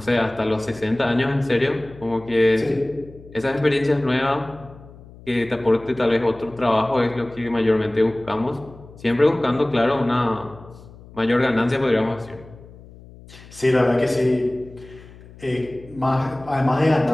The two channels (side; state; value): left; noise; hum, 20 dB below the sound